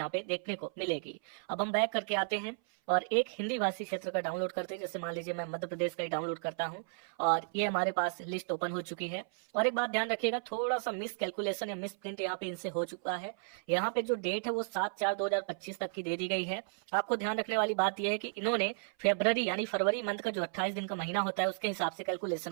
पे देखने को मिलेगी। अब हम बैक करके आते हैं और एक हिंदी भाषी क्षेत्र का डाउनलोड करते हैं। जैसे मान लीजिए मैं मध्य प्रदेश का ही डाउनलोड करता हूँ और ये हमारे पास लिस्ट ओपन हो चुकी है। और एक बात ध्यान रखिएगा, थोड़ा सा मिस कैलकुलेशन या मिस प्रिंट यहाँ पे इनसे हो चुका है। यहाँ पे जो डेट है वो 7/4/2025 तक की दे दी गई है। आपको ध्यान रखने वाली बात यह है कि इन्होंने फरवरी यानी फरवरी मंथ का जो 28 दिन का महीना होता है उसके हिसाब से कैलकुलेशन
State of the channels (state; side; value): silent; left; 55 dB below the other